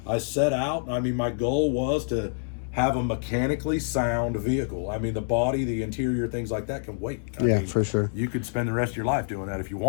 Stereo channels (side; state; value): right; silent; digital silence